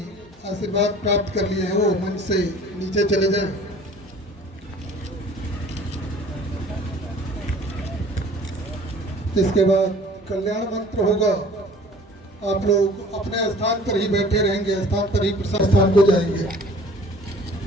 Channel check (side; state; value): both; normal; correlation 0.49